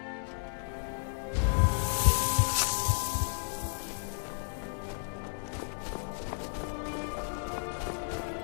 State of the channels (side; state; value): right; silent; 56 dB below the other